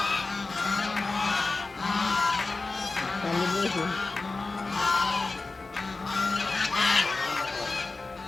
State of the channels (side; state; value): right; quieter; 3.6 dB